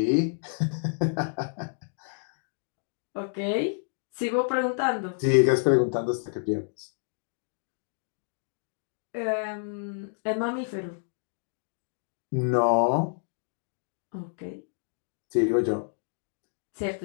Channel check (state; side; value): silent; right; digital silence